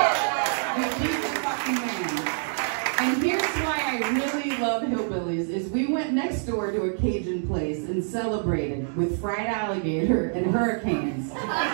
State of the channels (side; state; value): left; silent; digital silence